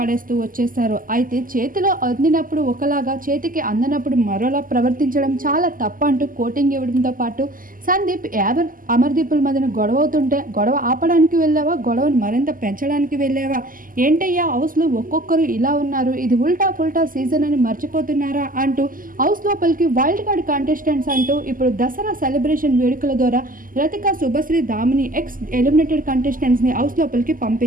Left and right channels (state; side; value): late; left; 0.41 ms